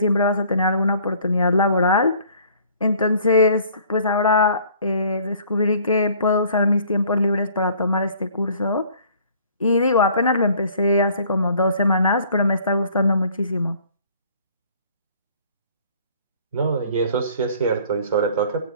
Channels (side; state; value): both; inverted; correlation -0.55